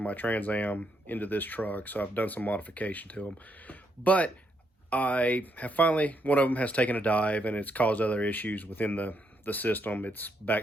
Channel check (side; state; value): both; normal; correlation 0.77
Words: my Trans Am into this truck, so I've done some modification to them. But I have finally, one of them has taken a dive and it's caused other issues within the system. It's